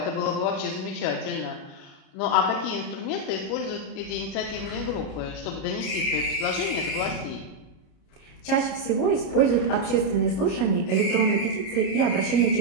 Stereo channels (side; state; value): right; late; 37 ms